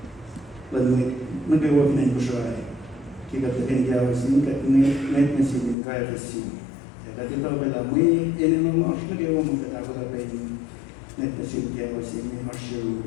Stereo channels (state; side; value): drops out; right; at 5.8 s